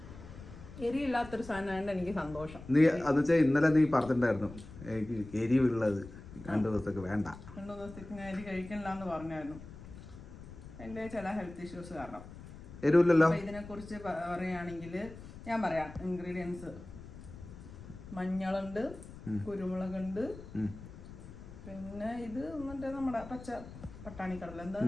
എരിയില്ലാത്തൊരു സാധനമായിട്ട് എനിക്ക് സന്തോഷം. നീ അത് വെച്ചാൽ ഇന്നലെ നീ പറഞ്ഞിട്ടുണ്ടായിരുന്നു എനിക്ക് എരിവുള്ളത് 2 ദിവസത്തേക്ക് വേണ്ട. 2 ദിവസത്തേക്ക് ഞാൻ എരി കഴിക്കണില്ല എന്ന് പറഞ്ഞായിരുന്നു. എൻ്റെ ചില ഹെൽത്ത് ഇഷ്യൂസ് കാരണം. എരിവില്ലല്ലോ. ഇതിനെ കുറിച്ച് പറയുകയാണെങ്കിൽ ഞാൻ പറയാം. ഇൻഗ്രീഡിയൻസ്: മഞ്ഞളുണ്ട്, കുരുമുളകുണ്ട്, പിന്നെ ഇത് മറ്റേ നമ്മുടെ പച്ച പട്ടാണി കടല,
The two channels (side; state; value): left; noise; rumble, 15 dB below the sound